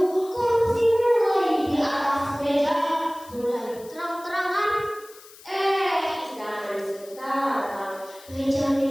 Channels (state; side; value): noise; left; hiss, 21 dB below the sound